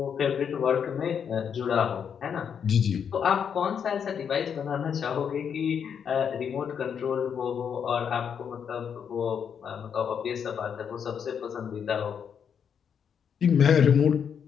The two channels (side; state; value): right; quieter; 7.5 dB